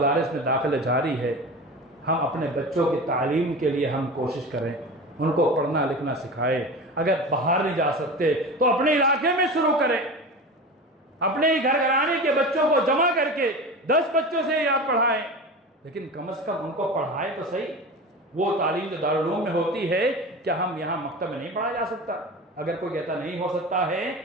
میں داخلے جاری ہے۔ ہم اپنے بچوں کی تعلیم کے لیے ہم کوشش کریں، ان کو پڑھنا لکھنا سکھائیں۔ اگر باہر نہیں جا سکتے تو اپنے علاقے میں شروع کریں، اپنے ہی گھر گھرانے کے بچوں کو جمع کر کے 10 بچوں سے یاد پڑھائیں، لیکن کم از کم ان کو پڑھائیں تو صحیح۔ وہ تعلیم جو دارالعلوم میں ہوتی ہے کیا ہم یہاں مکتب میں نہیں پڑھا جا سکتا؟ اگر کوئی کہتا نہیں ہو سکتا ہے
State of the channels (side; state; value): both; normal; correlation 0.30